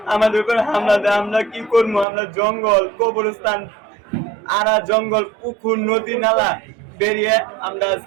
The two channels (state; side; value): drops out; left; at 2.1 s